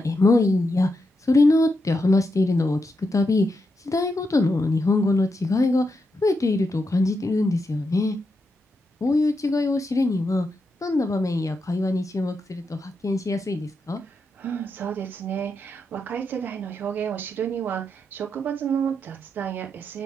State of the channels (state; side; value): normal; both; correlation 0.84